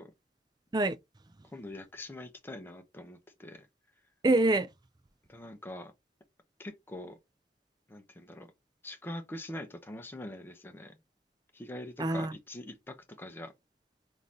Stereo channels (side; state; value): both; normal; correlation 0.63